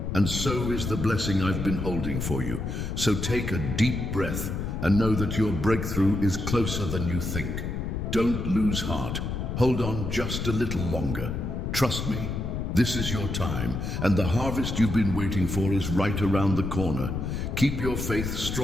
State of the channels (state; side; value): noise; left; rumble, 3 dB below the sound